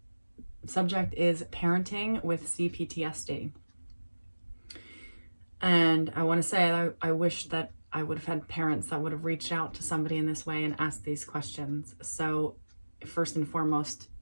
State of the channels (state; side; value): inverted; both; correlation -1.00